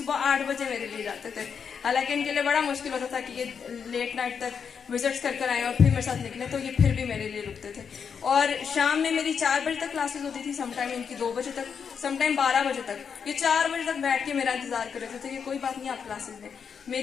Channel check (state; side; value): quieter; right; 6.7 dB